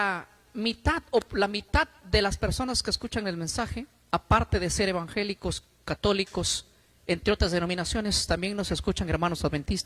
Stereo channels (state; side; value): identical; both; correlation 1.00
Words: mitad o la mitad de las personas que escuchan el mensaje, aparte de ser evangélicos, católicos, entre otras denominaciones, también nos escuchan hermanos